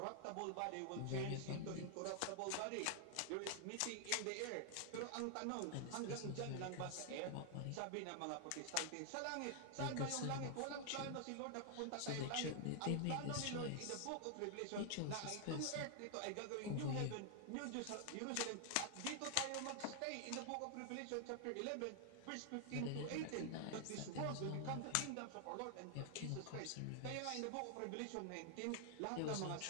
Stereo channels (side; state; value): both; different; correlation 0.00